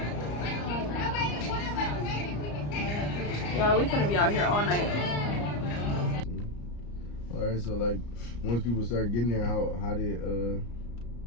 Yeah, we finna be out here all night. All right, so like once people start getting there, how did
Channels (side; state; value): right; late; 34 ms